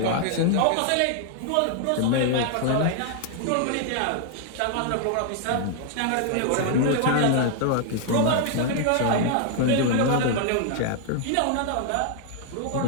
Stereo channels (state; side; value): different; both; correlation 0.00